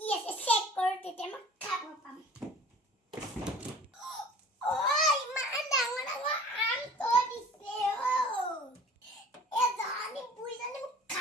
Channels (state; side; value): normal; both; correlation 0.46